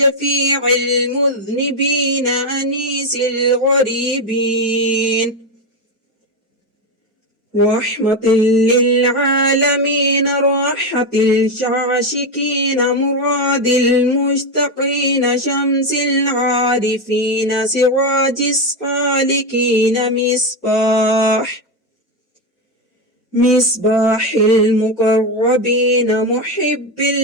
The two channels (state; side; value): normal; both; correlation 0.10